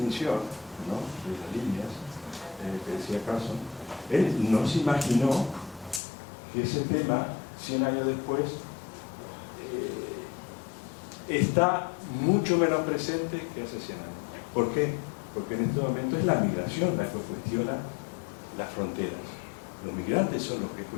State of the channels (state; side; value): drops out; right; at 6.0 s